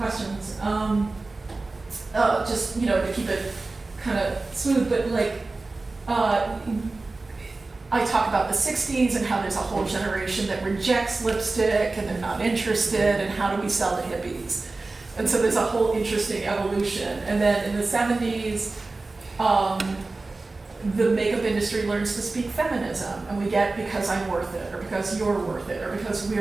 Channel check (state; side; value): quieter; left; 3.4 dB